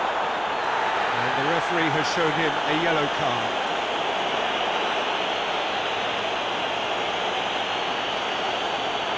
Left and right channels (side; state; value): right; noise; hum, 28 dB below the sound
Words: And the referee has shown him a yellow card.